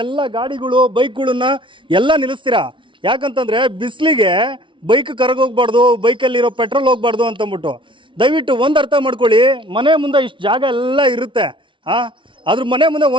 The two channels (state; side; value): late; left; 0.24 ms